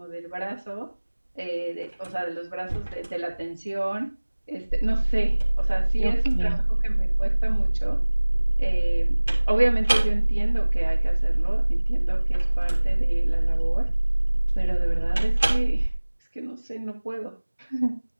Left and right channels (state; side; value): inverted; both; correlation -1.00